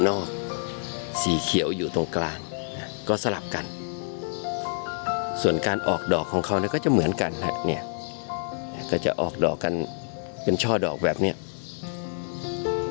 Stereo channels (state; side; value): silent; right; digital silence